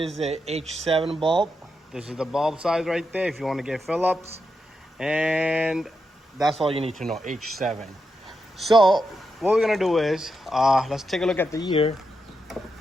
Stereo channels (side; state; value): both; normal; correlation 0.86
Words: a H7 bulb. This is the bulb size right there if you want to get Phillips. And that's all you need to know, H7. So what we're gonna do is, let's take a look at the year.